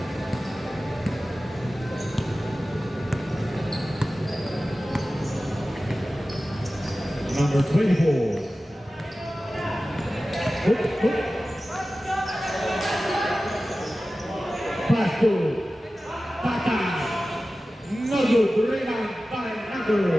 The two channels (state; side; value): normal; both; correlation 0.95